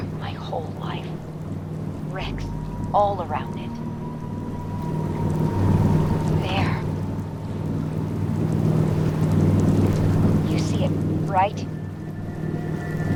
my whole life. Wrecks all around it. There. You see it, right?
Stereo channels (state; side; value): identical; both; correlation 1.00